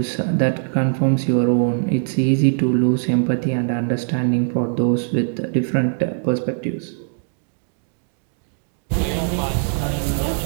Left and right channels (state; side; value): silent; left; 65 dB below the other